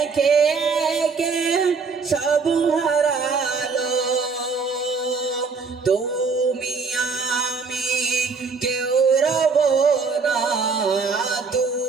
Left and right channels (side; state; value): left; quieter; 4.8 dB